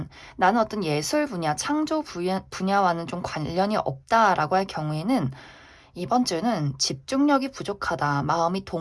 나는 어떤 예술 분야, 창조 분야와는 좀 관련이 없다라고 할 경우에는 이번 주는 집중력이 부족하다, 마음이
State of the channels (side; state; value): both; identical; correlation 1.00